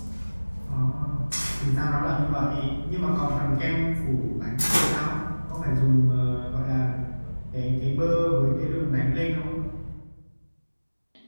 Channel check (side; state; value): both; inverted; correlation -1.00